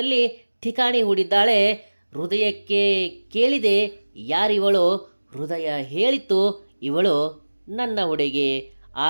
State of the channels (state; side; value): inverted; both; correlation -1.00